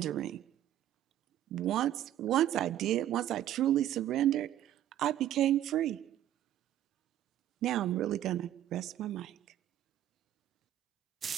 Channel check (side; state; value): left; quieter; 12.1 dB